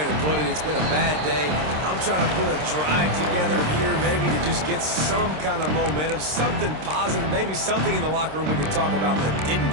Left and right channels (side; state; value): left; late; 26 ms